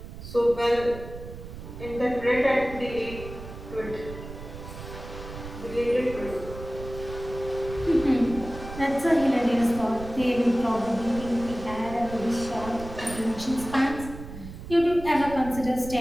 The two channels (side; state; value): right; noise; rumble, 12 dB below the sound